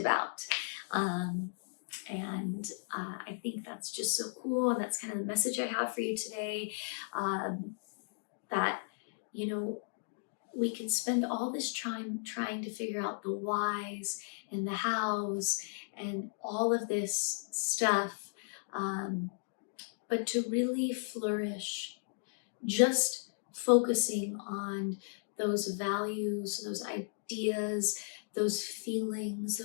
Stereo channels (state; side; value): silent; right; digital silence